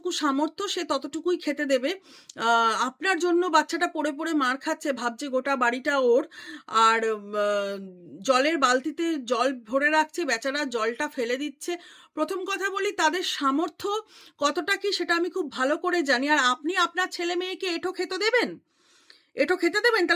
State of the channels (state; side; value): identical; both; correlation 1.00